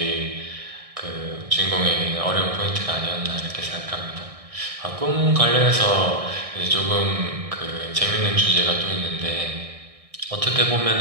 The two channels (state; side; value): late; left; 1.6 ms